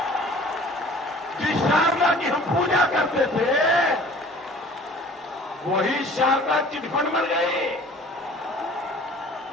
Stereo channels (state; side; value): normal; both; correlation 0.48